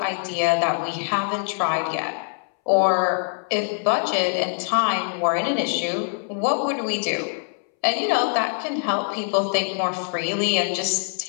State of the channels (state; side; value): silent; right; 63 dB below the other